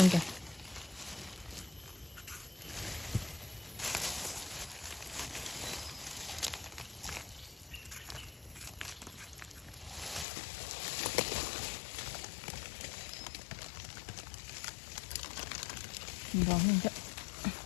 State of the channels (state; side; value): drops out; right; at 10.2 s